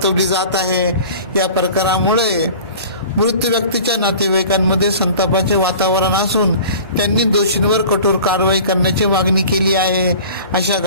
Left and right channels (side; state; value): both; inverted; correlation -0.42